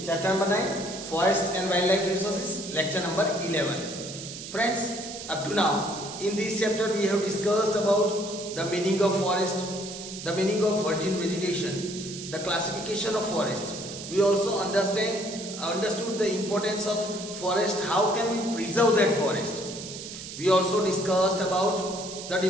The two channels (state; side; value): noise; right; hiss, 10 dB below the sound